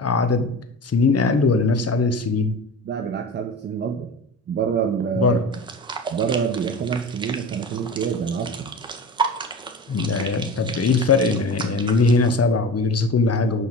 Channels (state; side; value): normal; both; correlation 0.32